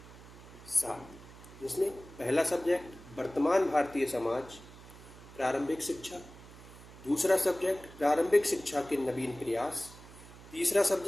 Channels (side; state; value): right; noise; hum, 18 dB below the sound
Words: 7, जिसमें पहला सब्जेक्ट वर्तमान भारतीय समाज, प्रारंभिक शिक्षा। दूसरा सब्जेक्ट प्रारंभिक शिक्षा के नवीन प्रयास। तीसरा